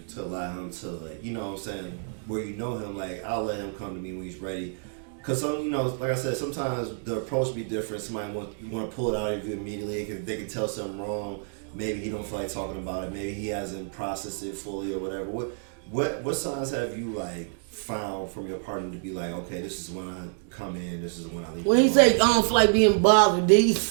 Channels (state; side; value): silent; left; digital silence